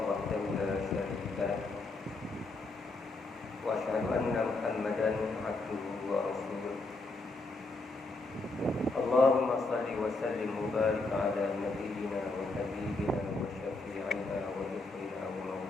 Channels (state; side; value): quieter; right; 3.3 dB